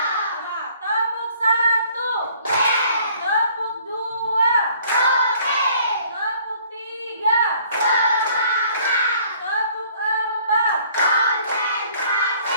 Nah, tepuk satu, tepuk dua.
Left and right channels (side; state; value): both; inverted; correlation -0.58